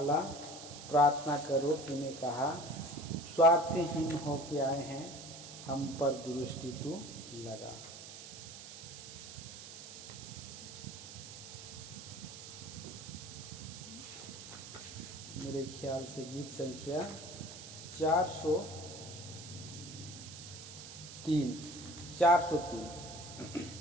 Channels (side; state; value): right; noise; hiss, 12 dB below the sound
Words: प्रार्थना करो, तूने कहा, स्वार्थहीन होके आए हैं, हम पर दृष्टि तू लगा। मेरे ख्याल से गीत संख्या 403